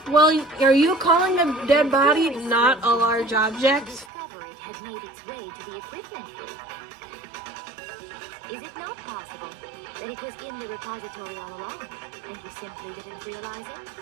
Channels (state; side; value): drops out; left; at 4.1 s